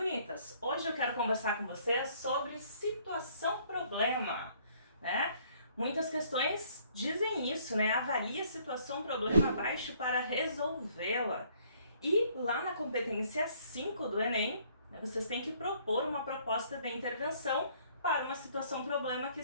hoje eu quero conversar com vocês sobre situação-problema, né? Muitas questões dizem isso, né? Avalie a situação-problema abaixo para resolvê-la. E lá na competência 5 do Enem, vocês têm que propor uma proposta de intervenção para uma situação-problema que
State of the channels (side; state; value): both; inverted; correlation -0.62